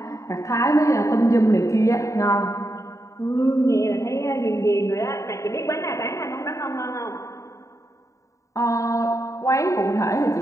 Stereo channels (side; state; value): right; late; 0.15 ms